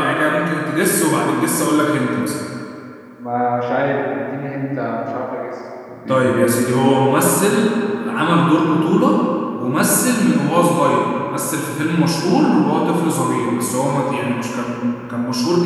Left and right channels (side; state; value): both; identical; correlation 1.00